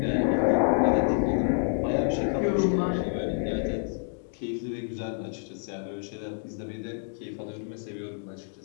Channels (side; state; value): right; silent; digital silence